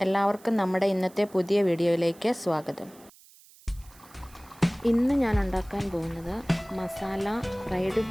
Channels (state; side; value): noise; right; hiss, 25 dB below the sound